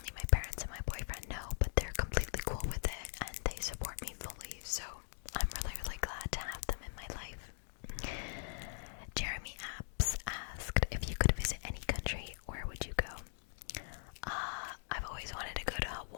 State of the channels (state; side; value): silent; right; digital silence